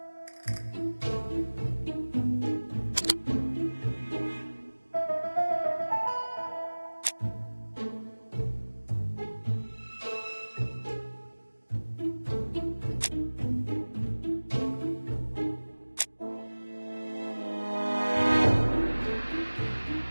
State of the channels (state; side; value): inverted; both; correlation -1.00